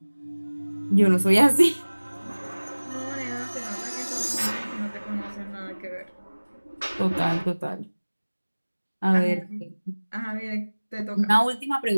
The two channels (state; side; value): inverted; both; correlation -1.00